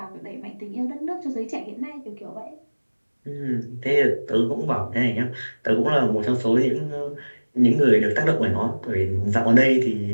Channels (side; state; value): both; inverted; correlation -1.00